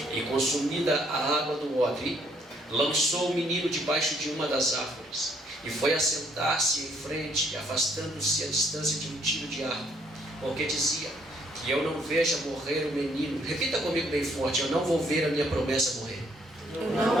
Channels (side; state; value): both; normal; correlation 0.68